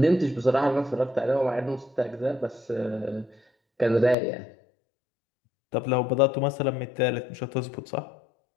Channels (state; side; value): drops out; right; at 4.2 s